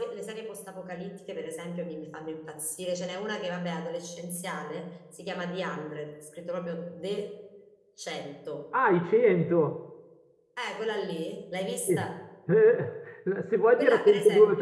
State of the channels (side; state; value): both; identical; correlation 1.00